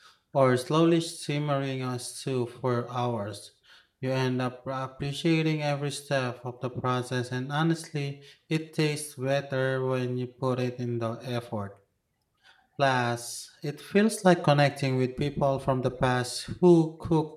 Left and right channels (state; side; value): identical; both; correlation 1.00